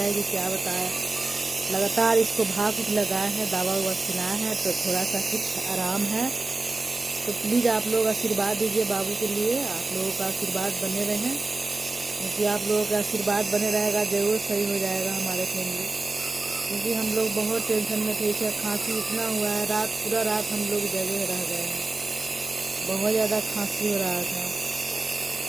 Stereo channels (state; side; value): quieter; left; 3.4 dB